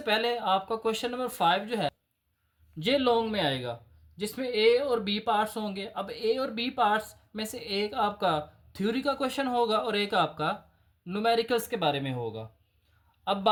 पहले आपका क्वेश्चन नंबर 5 जो है ये लॉन्ग में आएगा, जिसमें ए और बी पार्ट्स होंगे। अब ए और बी पार्ट्स में से एक आपका थ्योरी का क्वेश्चन होगा और एक आपका न्यूमेरिकल्स के बारे में होगा। अब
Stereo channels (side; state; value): both; identical; correlation 1.00